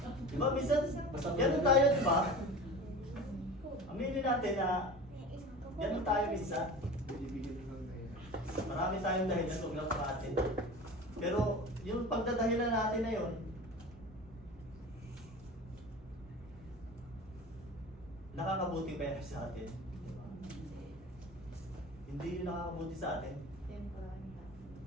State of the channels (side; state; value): both; normal; correlation 0.35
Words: di ba, minsan, ganun tayo, di ba? Aminin natin na ganun tayo minsan. Marami tayong dahilan, huwag lang sa atin. Pero yung pagdadahilan natin na yun, nakakabuti ba yan sa atin? Diba? Hindi yun nakakabuti sa atin.